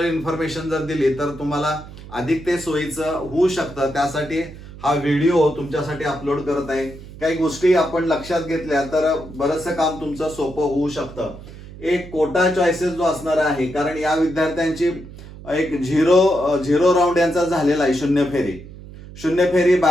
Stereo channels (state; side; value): noise; right; hum, 16 dB below the sound